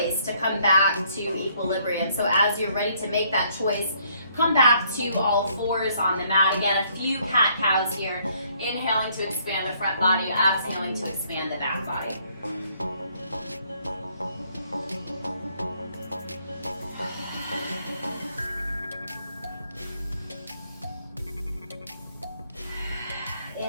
to come back to equilibrium. So as you're ready to make that choice, come back to all fours on the mat. Again, a few cat-cows here. Inhaling to expand the front body, exhaling to expand the back body.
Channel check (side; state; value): both; inverted; correlation -0.67